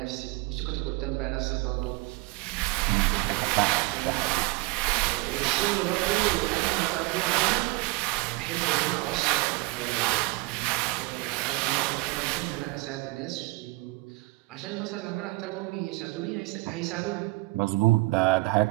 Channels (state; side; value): quieter; left; 23.7 dB